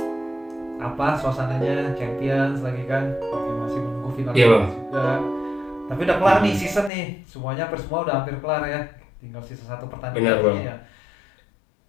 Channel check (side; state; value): right; drops out; at 6.9 s